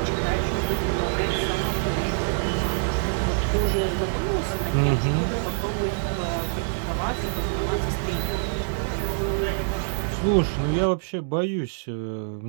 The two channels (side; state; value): left; silent; digital silence